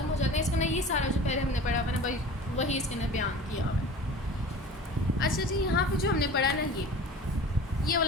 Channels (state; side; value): normal; both; correlation 0.39